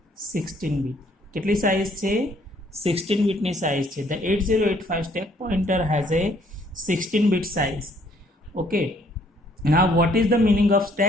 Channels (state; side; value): normal; both; correlation 0.64